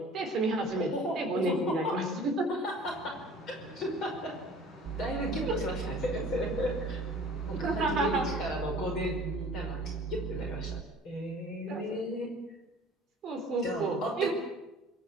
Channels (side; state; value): both; normal; correlation 0.47